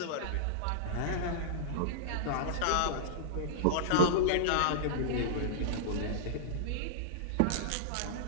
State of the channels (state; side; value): different; both; correlation -0.02